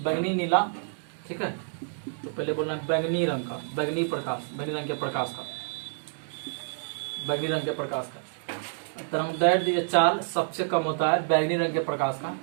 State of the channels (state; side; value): silent; left; digital silence